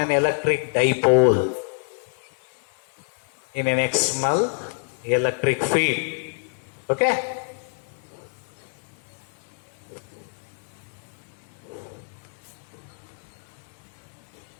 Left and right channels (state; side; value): silent; right; 57 dB below the other